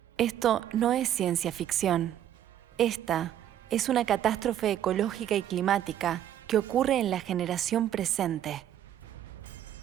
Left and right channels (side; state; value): left; quieter; 11.1 dB